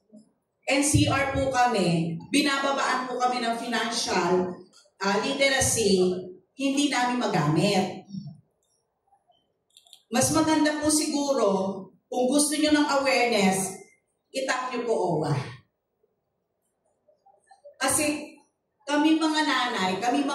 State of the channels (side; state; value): both; identical; correlation 1.00